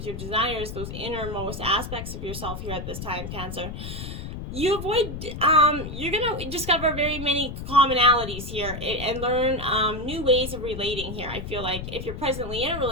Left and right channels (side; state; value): left; noise; rumble, 8 dB below the sound